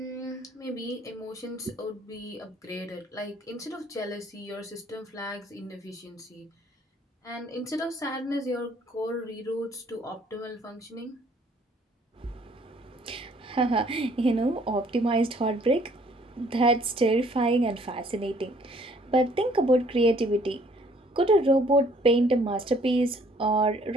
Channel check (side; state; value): both; normal; correlation 0.61